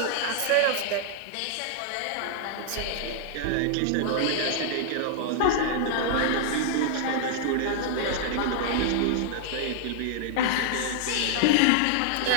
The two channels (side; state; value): both; different; correlation -0.01